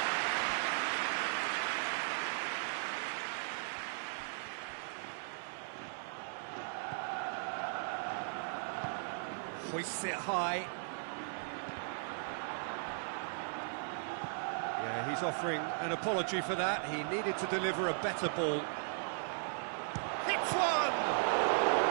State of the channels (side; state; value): left; silent; 53 dB below the other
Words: Hoists it high. Yeah, he's offering an apology for that. He needed to deliver a better ball. Hits one!